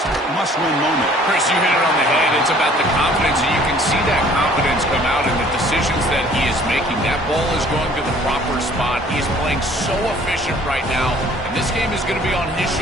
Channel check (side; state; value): both; normal; correlation 0.55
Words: must-win moment. Chris, you hit it on the head. It's about the confidence, and you can see that confidence come out in the decisions that he is making. That ball is going to the proper spot. He is playing so efficient right now, and this game is going to be on his